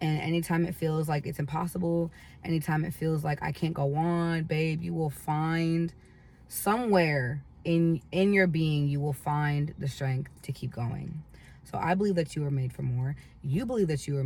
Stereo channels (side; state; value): both; identical; correlation 1.00